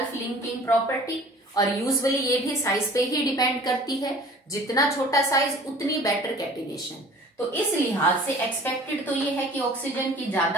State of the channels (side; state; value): both; normal; correlation 0.47